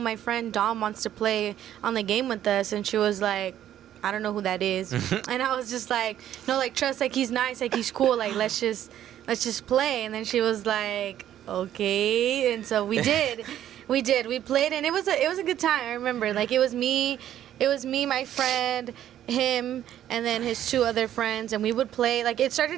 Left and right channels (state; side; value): quieter; left; 11.4 dB